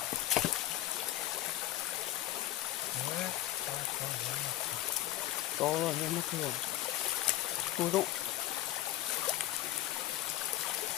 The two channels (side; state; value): right; quieter; 14.6 dB